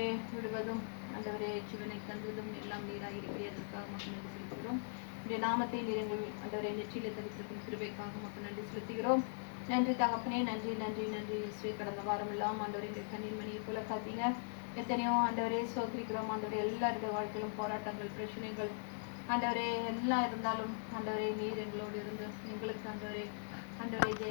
விடுவதும் ஆண்டவரே ஜீவனை தந்துவதும் எல்லாம் நீராக இருக்கிறதற்காக மக்கள் நன்றி செலுத்துகிறோம். இந்த நாமத்தை நிறைங்கள் ஆண்டவரே நெற்றியில தரித்திருக்கும் கிருபைக்காக மக்கள் நன்றி செலுத்துகிறோம். நன்றி தகப்பனே, நன்றி நன்றி நன்றி இயேசுவே. கடந்த வாரம் எல்லாம் ஆண்டவரை கண்ணீர் மணியை போல காத்தீங்க. எத்தனையோ ஆண்டவரே சோதரிக்கிறோம். ஆண்டவரே எல்லாருடைய வாழ்க்கையிலும் போராட்டங்கள் பிரச்சனைகள் ஆண்டவரே எல்லாம் இருந்தாலும் ஆண்டவரே நீர் எங்களோடு இருந்து எங்களுக்கு ஆண்டவரே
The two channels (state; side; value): silent; right; digital silence